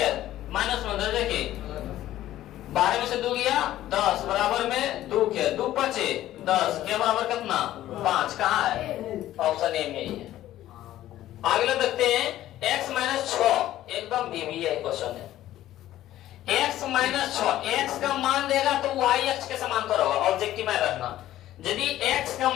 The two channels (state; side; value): quieter; right; 13.8 dB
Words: माइनस में रह जाके 12 में से 2 गया 10 बराबर में 2 के 2 बचे 10 के बराबर कितना 5, कहाँ है ऑप्शन ए में ही है। अगला देखते हैं x माइनस 6, एकदम भी है क्वेश्चन है, x माइनस 6, x का मान देगा तो y अक्ष के समांतर होगा, ऑब्जेक्टिव में रखना, यदि x का